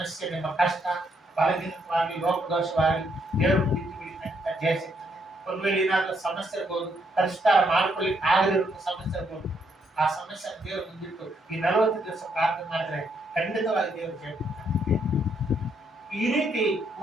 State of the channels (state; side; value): normal; both; correlation 0.74